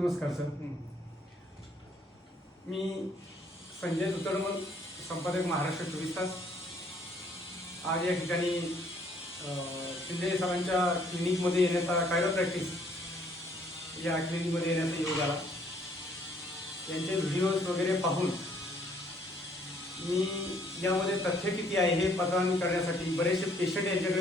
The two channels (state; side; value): normal; both; correlation 0.64